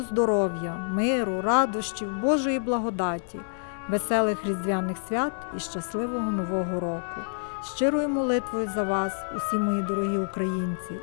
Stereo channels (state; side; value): silent; right; digital silence